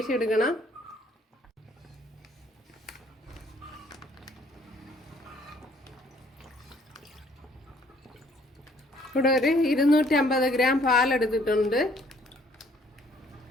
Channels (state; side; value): normal; both; correlation 0.62